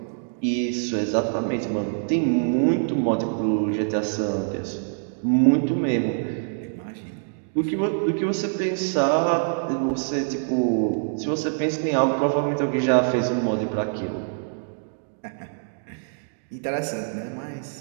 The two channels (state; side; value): silent; left; digital silence